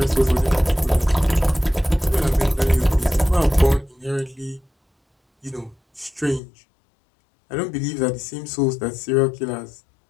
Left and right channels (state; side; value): drops out; right; at 6.4 s